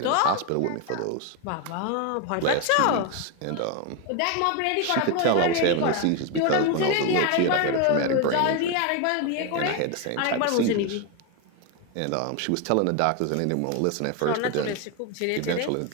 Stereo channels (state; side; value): different; both; correlation 0.02